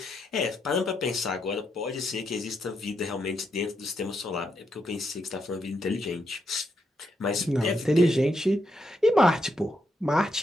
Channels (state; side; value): normal; both; correlation 0.80